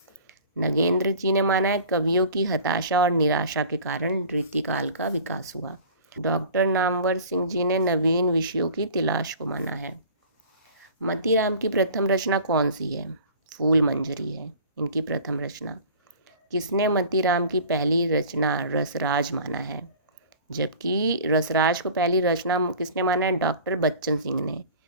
नगेंद्र जी ने माना है कवियों की हताशा और निराशा के कारण रीतिकाल का विकास हुआ। डॉक्टर नामवर सिंह जी ने नवीन विषयों की तलाश को माना है। मतीराम की प्रथम रचना कौन सी है? फूल मंजरी है इनकी प्रथम रचना। किसने मतीराम की पहली रचना रसराज माना है? जबकि रसराज को पहली रचना किसने माना है? डॉक्टर बच्चन सिंह ने।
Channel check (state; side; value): inverted; both; correlation -0.44